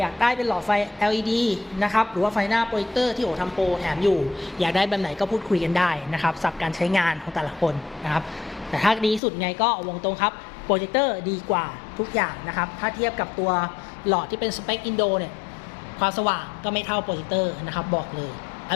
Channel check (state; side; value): drops out; right; at 9.2 s